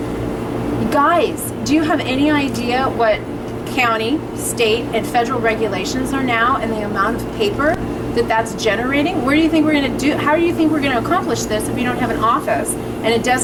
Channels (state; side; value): identical; both; correlation 1.00